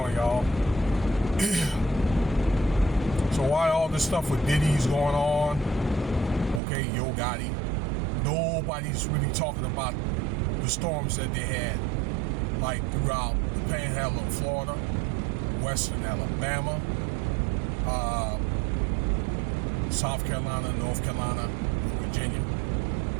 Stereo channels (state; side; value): drops out; left; at 6.6 s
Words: y'all? So why all this stuff with Diddy's going on? Okay, Yo Gotti. Nobody's really talking about the storms that they had, like throughout the Panhandle of Florida, Western Alabama, South Carolina, North Carolina, Virginia.